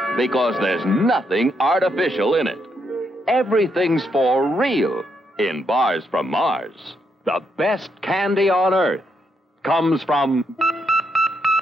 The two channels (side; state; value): both; normal; correlation 0.78